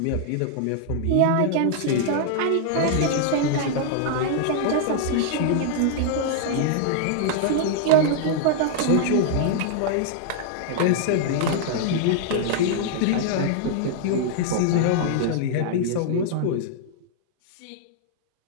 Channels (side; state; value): both; different; correlation -0.01